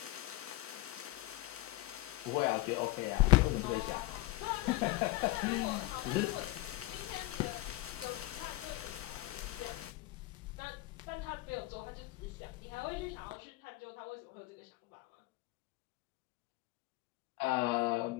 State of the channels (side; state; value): right; quieter; 18.8 dB